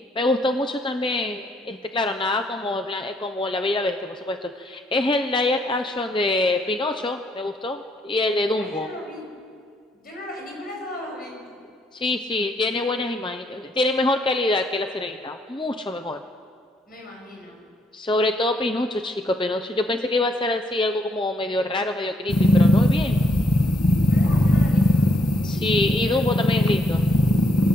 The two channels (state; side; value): normal; both; correlation 0.73